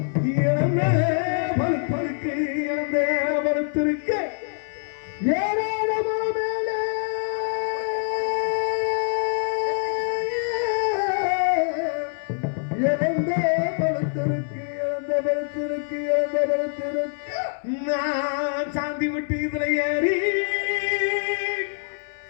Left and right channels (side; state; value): right; silent; digital silence